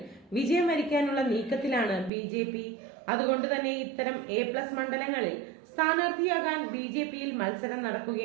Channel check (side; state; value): left; drops out; at 2.1 s